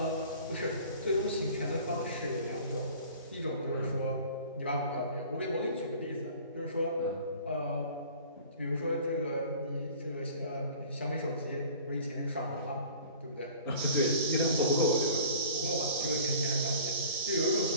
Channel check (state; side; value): inverted; both; correlation -0.46